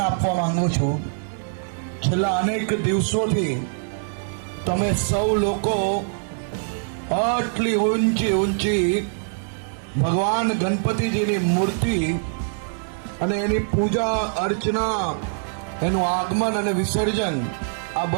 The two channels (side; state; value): left; silent; 60 dB below the other